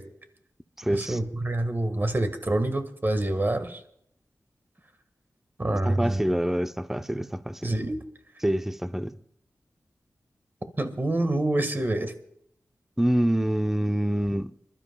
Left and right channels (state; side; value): normal; both; correlation 0.96